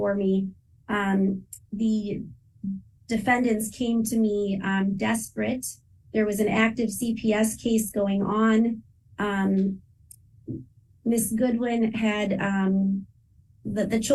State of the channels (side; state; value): both; identical; correlation 1.00